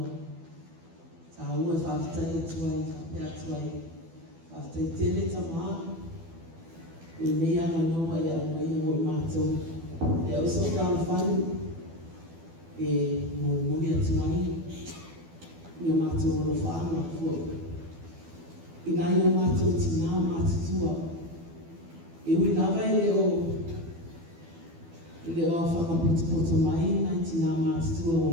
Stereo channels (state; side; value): late; left; 12 ms